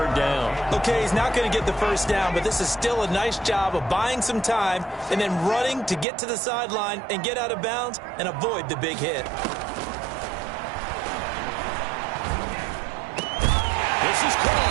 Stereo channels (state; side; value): drops out; left; at 6.1 s